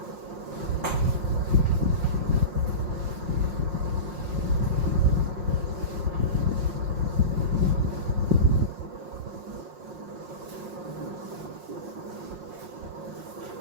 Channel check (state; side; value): late; left; 5.6 ms